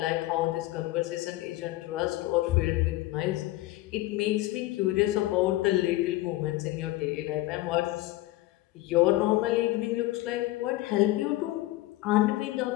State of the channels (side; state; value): right; quieter; 17.6 dB